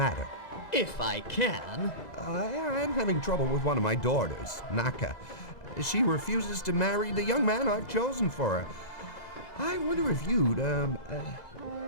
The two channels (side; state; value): right; late; 2.0 ms